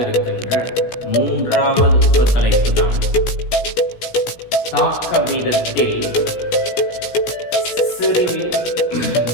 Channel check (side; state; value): right; late; 17 ms